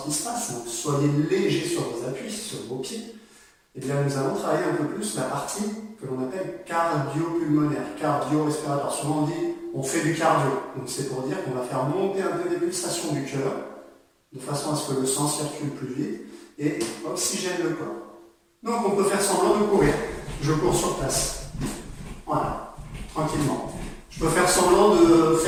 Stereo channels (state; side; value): identical; both; correlation 1.00